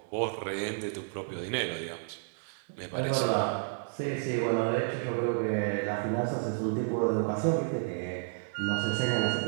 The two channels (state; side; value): silent; left; digital silence